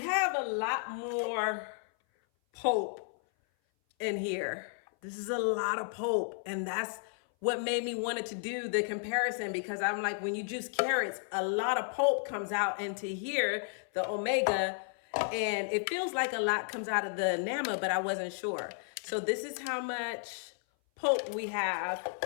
have a lot more pulp in here. This is a lot of pulp, and that's what made me wanted to do the comparison, because I'm like, when you juice carrots, a lot of pulp comes out into here, the Omega, and it feels like a lot comes out of the Nama, but I wasn't sure. So this is how much pulp we have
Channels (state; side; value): silent; right; 56 dB below the other